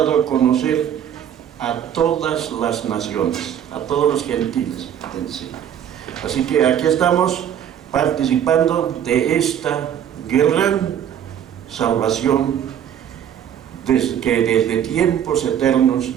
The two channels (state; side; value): quieter; left; 9.6 dB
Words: a conocer a todas las naciones, a todos los gentiles. Así que aquí estamos participando de esta gran salvación que desde tiempos